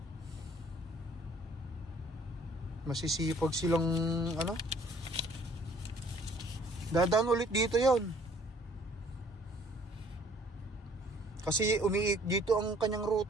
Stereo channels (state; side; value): normal; both; correlation 0.58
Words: Masisipag silang ano. Dadaan ulit dito yon. Kasi dito ang kanyang